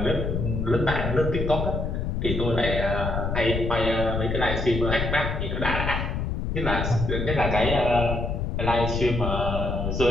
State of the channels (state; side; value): noise; left; rumble, 2 dB below the sound